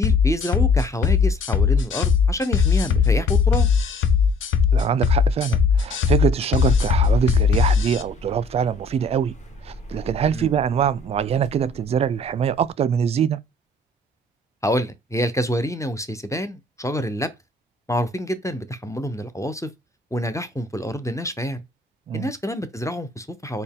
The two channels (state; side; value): normal; both; correlation 0.55